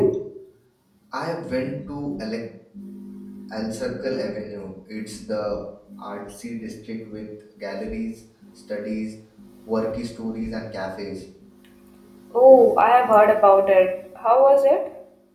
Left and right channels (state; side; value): identical; both; correlation 1.00